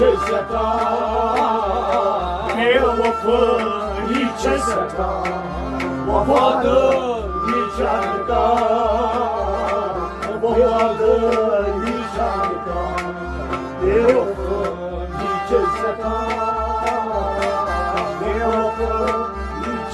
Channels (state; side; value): identical; both; correlation 1.00